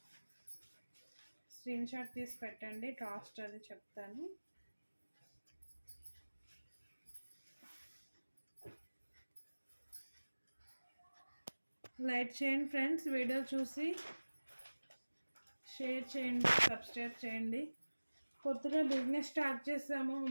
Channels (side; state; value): both; inverted; correlation -1.00